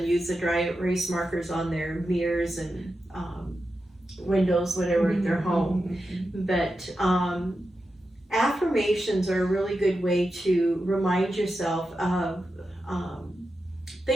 use the dry erase markers on their mirrors and windows, whatever, at their home. But affirmations are a really good way to remind yourself of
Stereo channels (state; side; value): normal; both; correlation 0.90